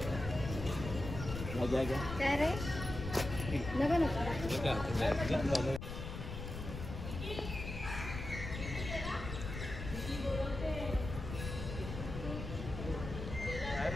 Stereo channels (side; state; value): left; noise; rumble, 7 dB below the sound